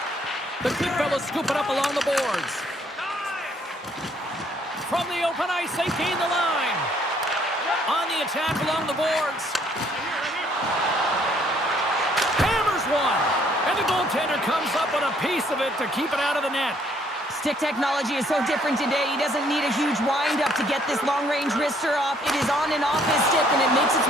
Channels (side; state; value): both; normal; correlation 0.65